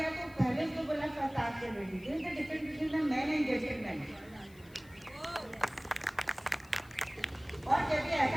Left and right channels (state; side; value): noise; left; hiss, 26 dB below the sound